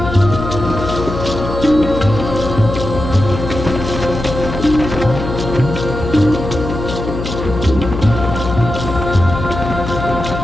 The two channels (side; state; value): left; noise; hum, 6 dB below the sound